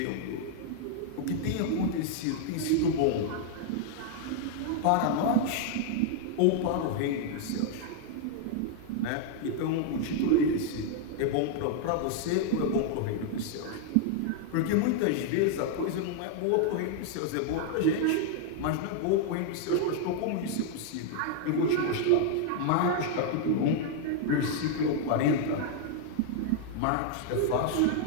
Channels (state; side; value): different; both; correlation 0.00